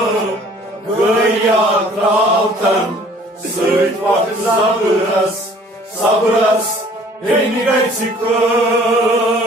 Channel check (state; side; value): normal; both; correlation 0.54